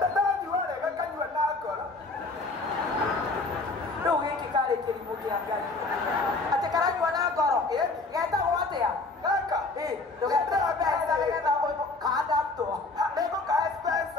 rĩu gĩkĩ karĩ kĩrimũ kĩa ngai atĩ karanyua na ngoro getagwo atĩa gaka ndũgeterwo mbeca nĩgetha kandamtwo nĩngũkahe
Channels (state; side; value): quieter; right; 3.5 dB